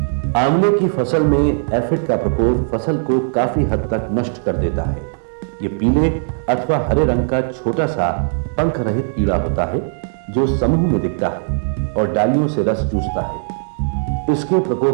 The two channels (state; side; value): silent; left; digital silence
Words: आंवले की फसल में एफिड का प्रकोप फसल को काफी हद तक नष्ट कर देता है। ये पीले अथवा हरे रंग का छोटा सा पंख रहित कीड़ा होता है जो समूह में दिखता है और डालियों से रस चूसता है। इसके